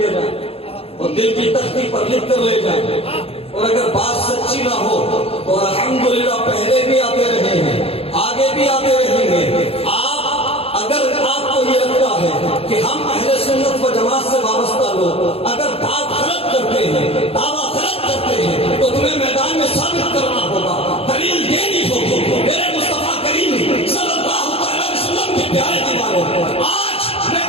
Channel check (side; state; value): right; late; 0.28 ms